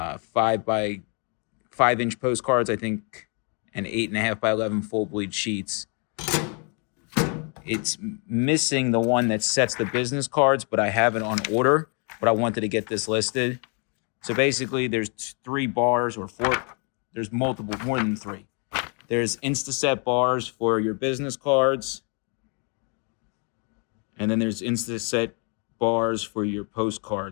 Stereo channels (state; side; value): quieter; right; 37.4 dB